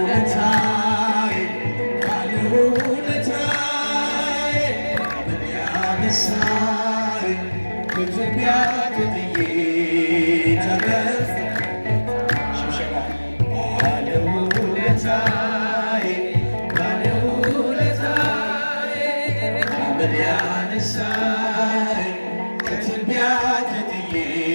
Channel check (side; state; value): both; inverted; correlation -1.00